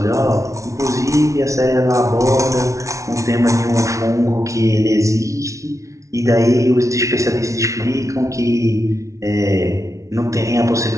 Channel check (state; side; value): late; left; 0.15 ms